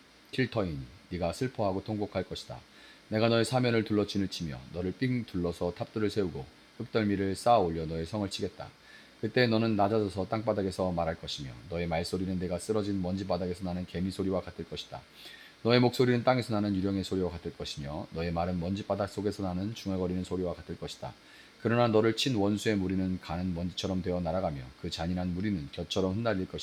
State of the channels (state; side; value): identical; both; correlation 1.00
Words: 킬터이니 네가 슬퍼하고 통곡할 것이다. 내가 너의 사면을 둘러 진을 치며 너를 삥 둘러서 탑들을 세우고 흙덜미를 쌓아 올려 너의 성을 치겠다. 그때 너는 낮아져서 땅바닥에서 말할 것이며 너의 말소리는 내가 쓰러진 먼지 바닥에서 나는 개미 소리와 같을 것이다. 너의 목소리는 땅에서 나는 유령의 소리와 같을 것이며 너의 말은 먼지 바닥 속에서 나는 중얼거리는 소리와 같을 것이다. 그러나 너를 친 원수의 무리는 가는 먼지처럼 되어 날아가며 그 잔인한 무리는 곁처럼 흩날릴